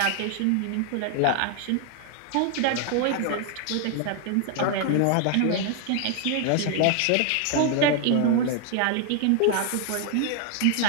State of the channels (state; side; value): different; both; correlation 0.00